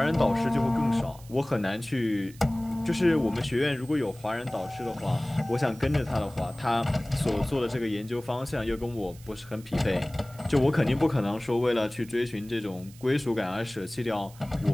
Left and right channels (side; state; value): right; noise; hiss, 22 dB below the sound